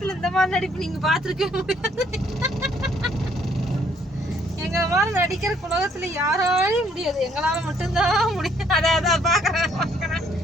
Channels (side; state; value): both; normal; correlation 0.66